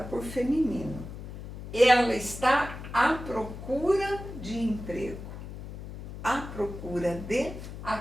feminino. Ela está à procura de emprego. À procura de,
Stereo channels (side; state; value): left; noise; hum, 11 dB below the sound